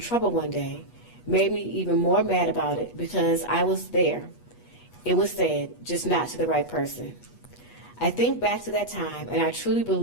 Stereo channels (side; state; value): right; late; 8.3 ms